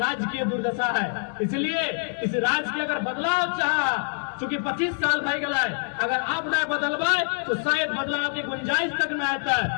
की दुर्दशा है। इसलिए इस राज्य की अगर बदलाव चाह, चूंकि 25 साल भाई गला है, अगर आप न बदलवाए तो शायद बदलाव की गुंजाइश तक न आता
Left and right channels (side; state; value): right; silent; 56 dB below the other